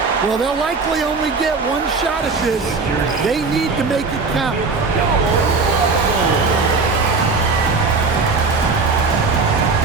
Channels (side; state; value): left; quieter; 4.3 dB